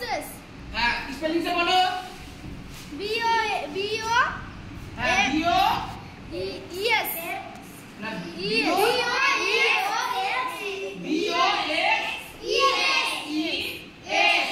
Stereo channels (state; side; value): identical; both; correlation 1.00